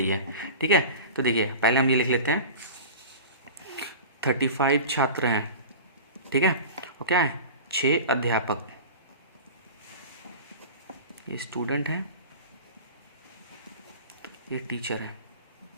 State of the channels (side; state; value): both; inverted; correlation -0.33